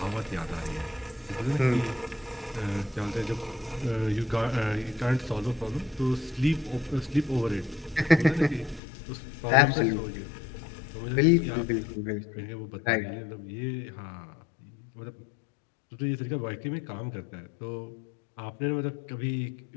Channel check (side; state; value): right; drops out; at 8.8 s